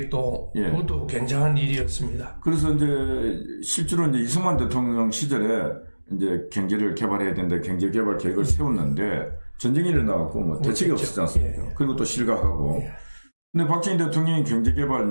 그것도 굉장한 일이었습니다. 그래서 이제 실제로 이제 이승만 대통령 시절에 이제 경제를 개발해야 된다, 경제개발 계획을 세웠는데 전쟁이 일어나갖고 대책이 없었지 않습니까? 그리고 또 실각하고. 근데 박정희 대통령이 경제개발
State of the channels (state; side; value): inverted; both; correlation -1.00